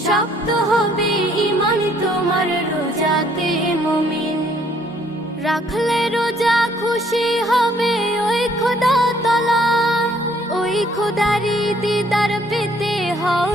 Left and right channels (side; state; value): both; normal; correlation 0.64